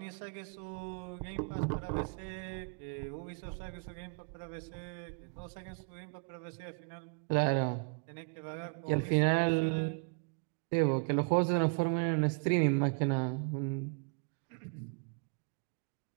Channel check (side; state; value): left; quieter; 36.6 dB